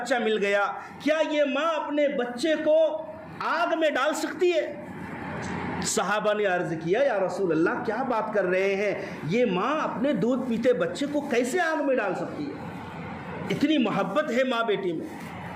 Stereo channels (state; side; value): identical; both; correlation 1.00